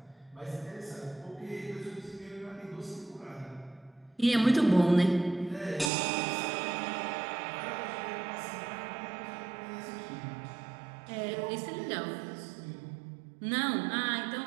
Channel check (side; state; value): left; drops out; at 5.9 s